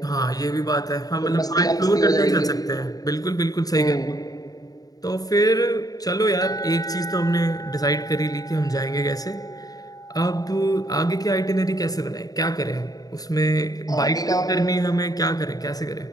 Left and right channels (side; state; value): right; late; 0.18 ms